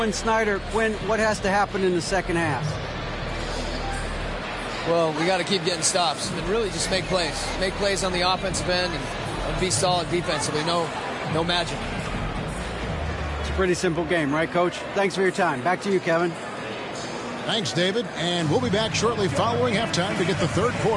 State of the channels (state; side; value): identical; both; correlation 1.00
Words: Snyder, Quinn, what has to happen in the second half? Well, we got to keep getting stops and really just make plays. Make plays on the offensive end and be solid defensively. No magic. It's a pretty simple game, right, Coach? Thanks for your time. Back to you, Kevin. Thanks, David. And we'll be back shortly following halftime to get the third